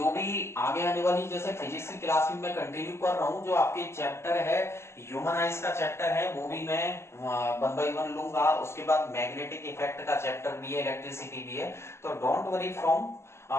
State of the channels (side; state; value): right; late; 0.13 ms